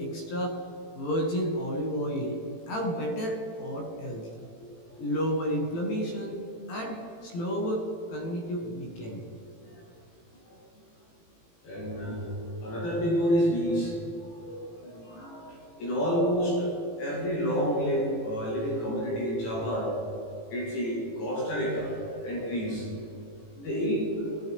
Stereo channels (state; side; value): late; right; 18 ms